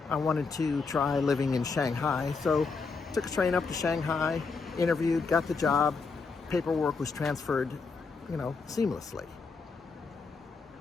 I wanted to try living in Shanghai, so took a train up to Shanghai, interviewed, got the job, paperwork was transferred, seamlessly.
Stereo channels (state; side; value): quieter; right; 4.6 dB